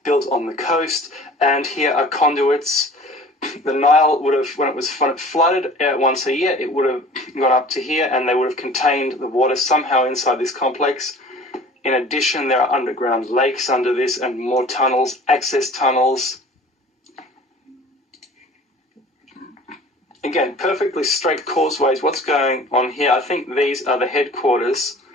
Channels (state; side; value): normal; both; correlation 0.45